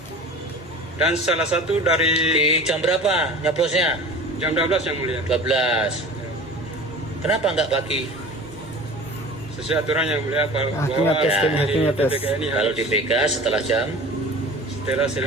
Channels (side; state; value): both; normal; correlation 0.39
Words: Dan salah satu dari Di jam berapa nyoblosnya? jam 12 yang mulia. 12. Kenapa nggak pagi? Sesuai aturan yang mulia bahwa Hakimnya tes, di hakimnya tes. DPK ini Kalau harus DPK setelah jam setelah